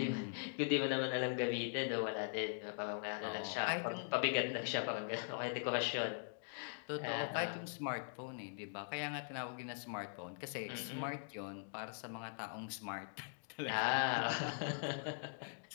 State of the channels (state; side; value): silent; right; digital silence